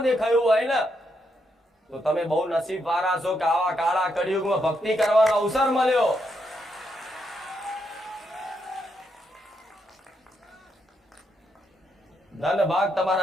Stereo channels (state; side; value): normal; both; correlation 0.80